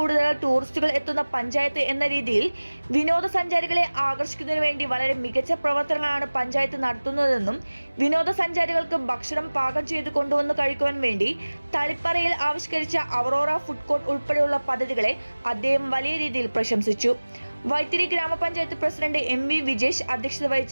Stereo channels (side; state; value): both; inverted; correlation -1.00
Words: ടൂറിസ്റ്റുകൾ എത്തുന്ന പഞ്ചായത്ത് എന്ന രീതിയിൽ വിനോദസഞ്ചാരികളെ ആകർഷിക്കുന്നതിന് വേണ്ടി വളരെ മികച്ച പ്രവർത്തനങ്ങളാണ് പഞ്ചായത്ത് നടത്തുന്നതെന്നും വിനോദസഞ്ചാരികൾക്ക് ഭക്ഷണം പാകം ചെയ്ത് കൊണ്ടുവന്ന് കഴിക്കുവാൻ വേണ്ടി തളിപ്പറയിൽ ആവിഷ്കരിച്ച അവറോറ ഫുഡ് കോർട്ട് ഉൾപ്പെടെയുള്ള പദ്ധതികളെ അദ്ദേഹം വലിയ രീതിയിൽ പ്രശംസിച്ചു. വൈത്തിരി ഗ്രാമപഞ്ചായത്ത് പ്രസിഡന്റ് എം വി വിജേഷ് അധ്യക്ഷത